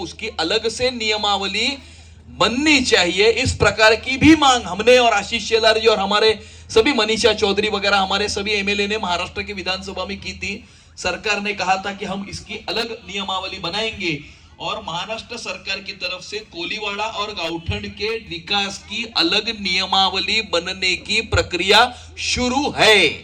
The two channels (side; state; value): both; identical; correlation 1.00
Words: अलग से नियमावली बननी चाहिए. इस प्रकार की भी मांग हमने और आशीष शेलार जी और हमारे सभी मनीषा चौधरी वगैरह हमारे सभी MLA ने महाराष्ट्र की विधानसभा में की थी. सरकार ने कहा था कि हम इसकी अलग नियमावली बनाएंगे, और महाराष्ट्र सरकार की तरफ से कोलीवाड़ा और गांवठन के विकास की अलग नियमावली बनने की प्रक्रिया शुरू है.